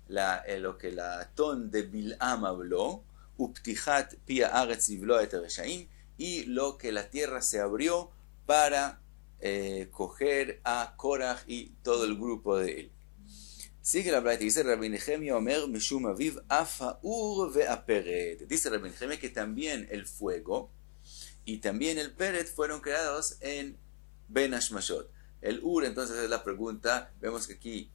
lo que la Atón de Bil'am habló. Uptichat pia aretz livlo et reshaim, y lo que la tierra se abrió para coger a Korach y todo el grupo de él. Sigue la Braita, dice Rabbi Nehemia Omer Mishum Aviv Afaur ve'aperet. Dice Rabbi Nehemia que también el fuego y también el peret fueron creados en Ben Ashmashot. El Ur, entonces, es la pregunta. Vemos que aquí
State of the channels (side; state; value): right; silent; 54 dB below the other